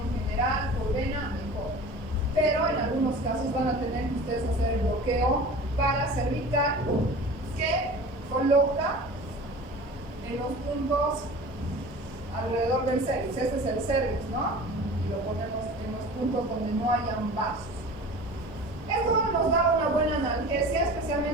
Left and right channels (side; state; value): both; normal; correlation 0.39